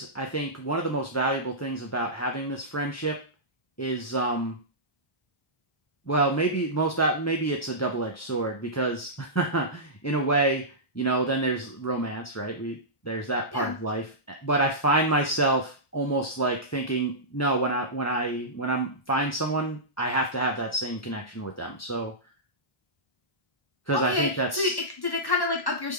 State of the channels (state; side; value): late; right; 1.1 ms